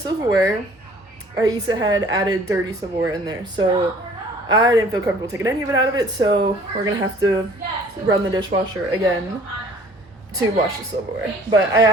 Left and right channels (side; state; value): both; normal; correlation 0.53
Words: Aisa had added dirty silverware in there, so I didn't feel comfortable taking any of it out of it, so we're gonna have to run the dishwasher again to wash the silverware. But I